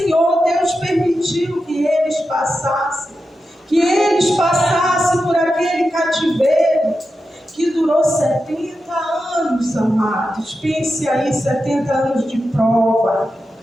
Deus permitiu que eles passassem. Que eles passassem por aquele cativeiro que durou 70 anos, amados. Pense aí, 70 anos de prova.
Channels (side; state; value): both; normal; correlation 0.90